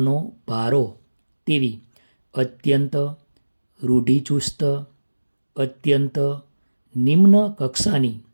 ભારો તેવી અત્યંત રૂઢિચુસ્ત, અત્યંત નિમ્ન કક્ષાની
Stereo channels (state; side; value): inverted; both; correlation -1.00